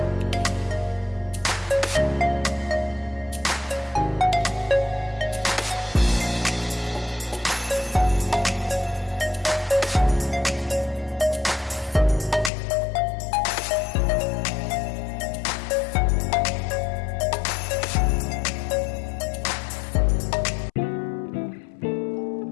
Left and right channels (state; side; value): drops out; right; at 12.5 s